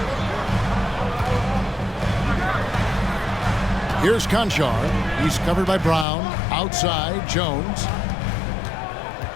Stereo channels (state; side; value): drops out; right; at 6.1 s